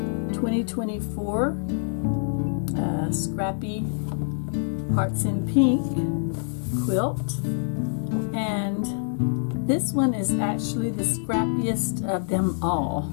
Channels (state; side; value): silent; right; digital silence